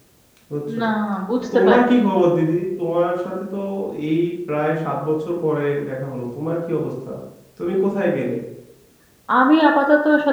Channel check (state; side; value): identical; both; correlation 1.00